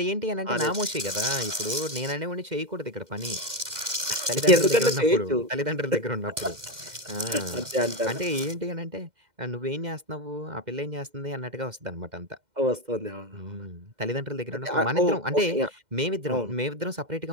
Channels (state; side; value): late; left; 2.1 ms